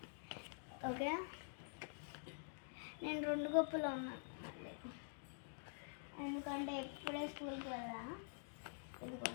ఓకే, నేను 2 గొప్పలో ఉన్నాను మళ్ళీ, ఎందుకంటే ఇప్పుడే స్కూల్కి వెళ్ళా.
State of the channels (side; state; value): right; silent; digital silence